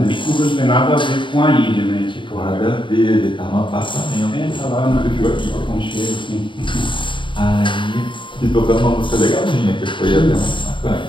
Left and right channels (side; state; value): right; late; 0.24 ms